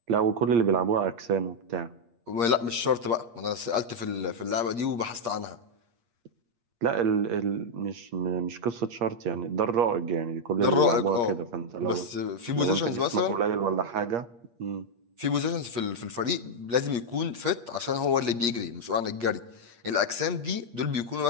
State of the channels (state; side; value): late; left; 8.5 ms